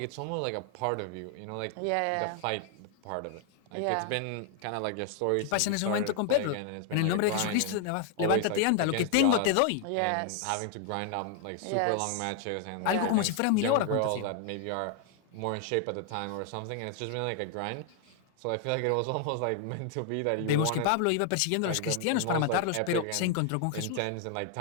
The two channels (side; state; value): both; different; correlation 0.00